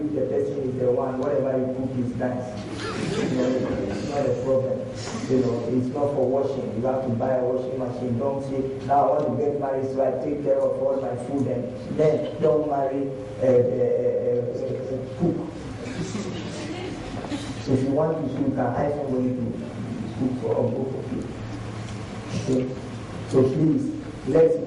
person is the one, whatever you cook is nice. It's not a problem. It's not for washing. You have to buy a washing machine. Don't say, now I want to get married so I take care of all my food, and then don't marry cook. So if you want to cook, you can hire somebody to cook for both of you. Okay? So please, let's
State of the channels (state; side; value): identical; both; correlation 1.00